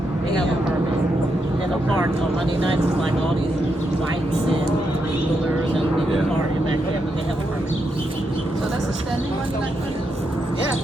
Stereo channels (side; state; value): both; normal; correlation 0.82